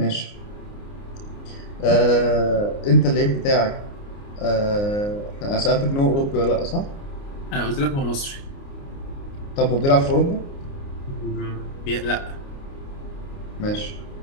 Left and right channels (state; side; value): late; right; 29 ms